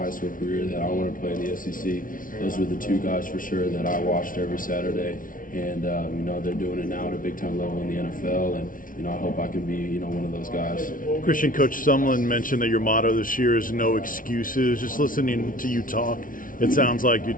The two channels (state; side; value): late; right; 0.39 ms